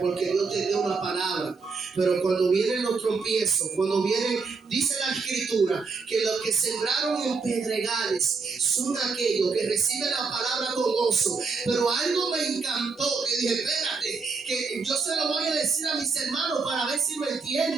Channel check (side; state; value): left; quieter; 4.6 dB